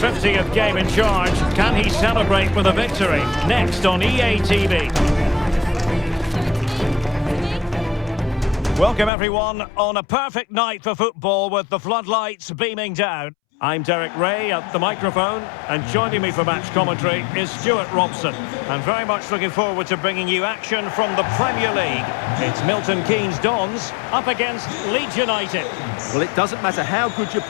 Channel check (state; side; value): drops out; right; at 9.1 s